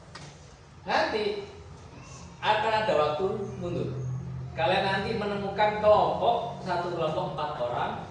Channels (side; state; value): both; identical; correlation 1.00